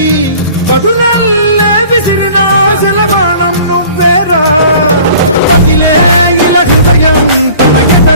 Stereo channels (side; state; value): both; inverted; correlation -0.48